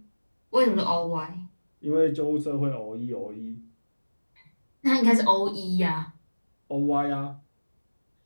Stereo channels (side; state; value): both; inverted; correlation -1.00